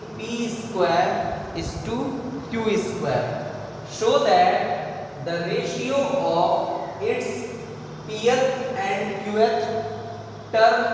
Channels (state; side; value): identical; both; correlation 1.00